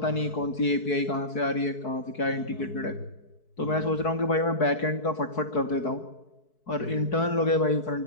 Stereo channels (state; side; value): late; right; 4.6 ms